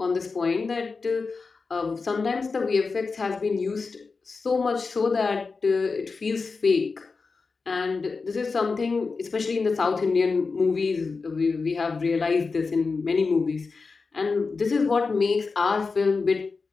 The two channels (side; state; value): right; quieter; 4.4 dB